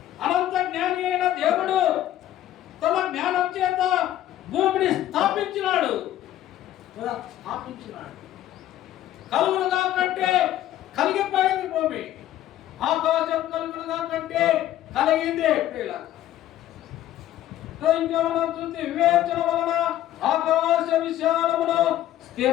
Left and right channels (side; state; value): right; quieter; 13.0 dB